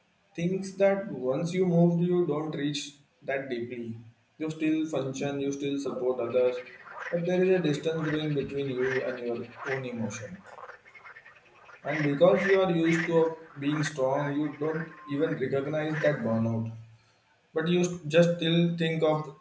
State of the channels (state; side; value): identical; both; correlation 1.00